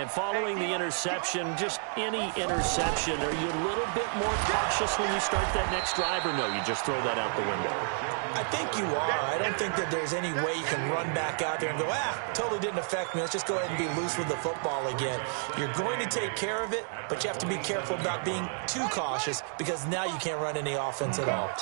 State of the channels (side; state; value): left; silent; 58 dB below the other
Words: following the interception, just any interception, are you a little bit more cautious when you start that next drive, or no, you just throw that out the window? I think you are. I don't think that there's any way you can run back out there and go, totally didn't affect me. Let's just go ahead and be loose with the football again. You're going to take care of it, but you have to be careful about being too cautious because now you can't run any offense at all.